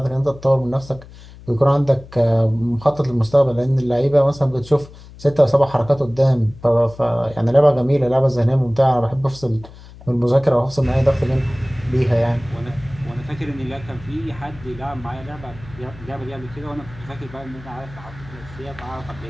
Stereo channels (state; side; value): noise; left; hum, 19 dB below the sound